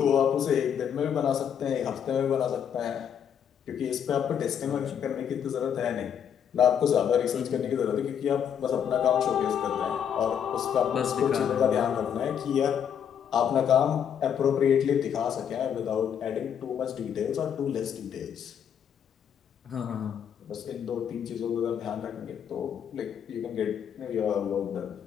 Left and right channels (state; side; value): quieter; right; 8.4 dB